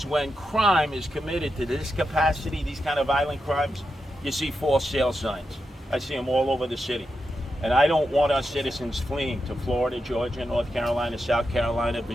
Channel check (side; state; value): both; normal; correlation 0.87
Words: when crime is committed to this capacity, these kind of violent crimes, you see false sale signs. I see them all over the city. And I don't want our citizens fleeing to Florida, Georgia, North Carolina, South Carolina,